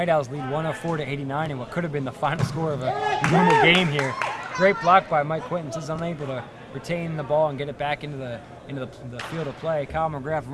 Owls lead 104-89 in what could have been the final score of a normal game here. Great block by Mike Quintons. Is unable to retain the ball and get it back into the field of play. Kyle McGrath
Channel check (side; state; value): both; identical; correlation 1.00